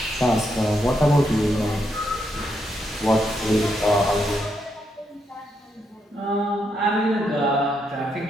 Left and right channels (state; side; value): normal; both; correlation 0.79